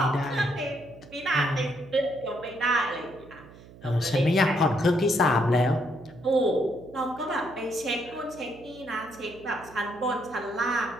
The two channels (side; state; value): right; noise; hum, 20 dB below the sound